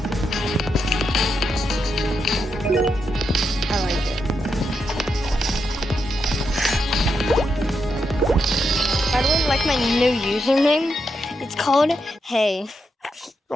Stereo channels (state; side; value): normal; both; correlation 0.83